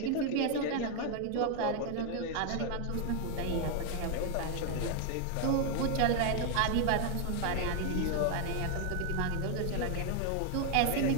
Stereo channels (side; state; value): both; different; correlation 0.00